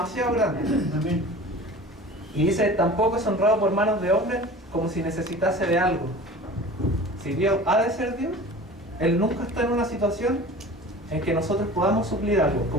grande. Amén. Y dice, tampoco es honrado por manos de hombres como si necesitase de algo. Si Dios ha de ser Dios, Él nunca está en una situación en que nosotros podamos suplir algo,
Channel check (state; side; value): normal; both; correlation 0.40